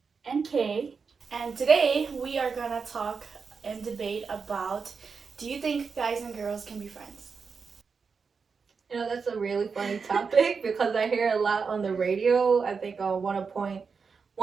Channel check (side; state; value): left; quieter; 5.3 dB